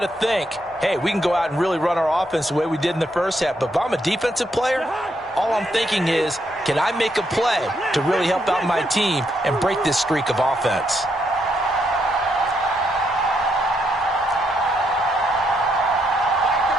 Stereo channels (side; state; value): both; normal; correlation 0.77